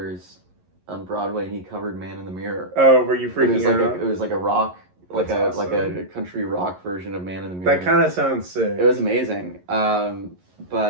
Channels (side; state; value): left; late; 11 ms